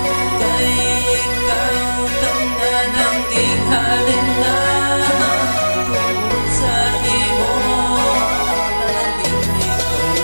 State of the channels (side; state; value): both; inverted; correlation -1.00